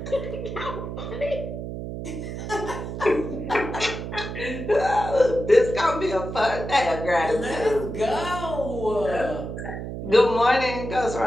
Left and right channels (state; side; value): noise; right; hum, 7 dB below the sound